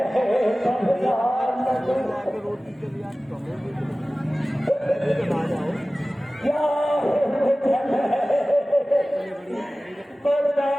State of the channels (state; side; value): normal; both; correlation 0.97